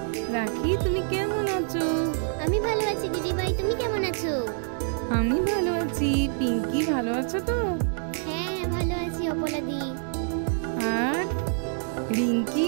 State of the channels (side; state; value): left; silent; digital silence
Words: রাখি, তুমি কেমন আছো? আমি ভালো আছি দিদিভাই, তুমি কেমন আছো? আমি ভালো আছি। পিঙ্কি ভালো আছো তো? হ্যাঁ ভালো আছি অপলাদি। আর